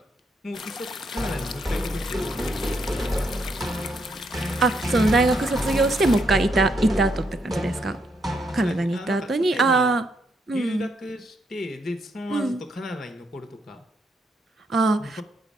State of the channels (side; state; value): both; normal; correlation 0.76